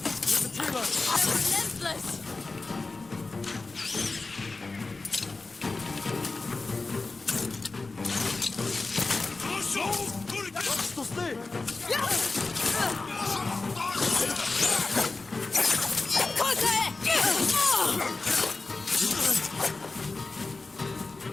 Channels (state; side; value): quieter; right; 3.6 dB